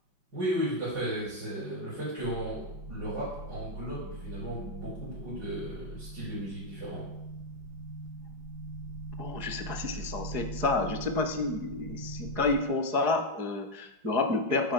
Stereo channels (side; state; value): left; late; 4.9 ms